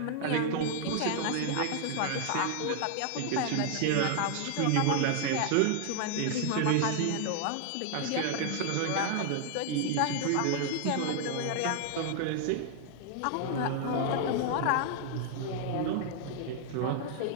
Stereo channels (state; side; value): different; both; correlation 0.00